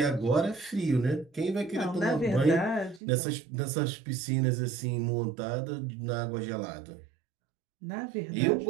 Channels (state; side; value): drops out; left; at 3.0 s